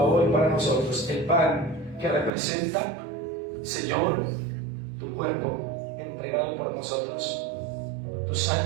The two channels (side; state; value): left; drops out; at 2.3 s